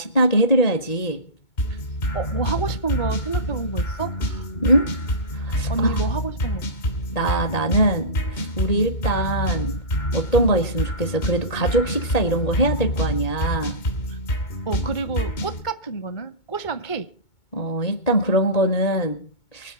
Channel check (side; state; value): right; late; 2.2 ms